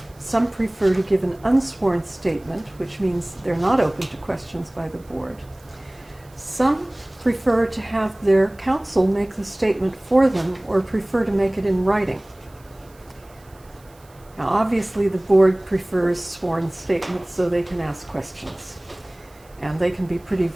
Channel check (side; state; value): right; noise; hiss, 29 dB below the sound